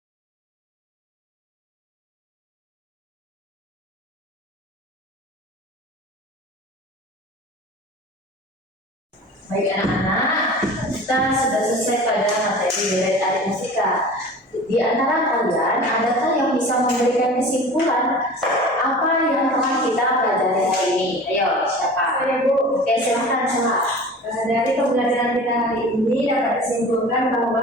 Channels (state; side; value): normal; both; correlation 0.39